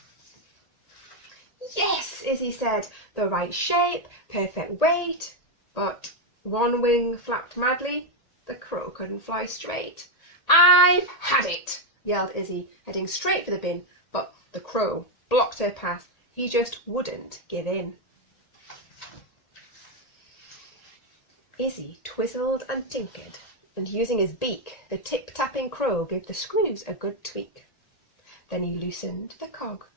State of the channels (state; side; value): late; right; 1.8 ms